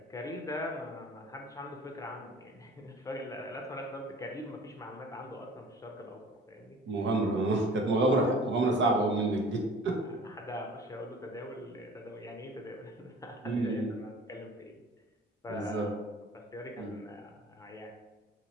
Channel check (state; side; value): normal; both; correlation 0.46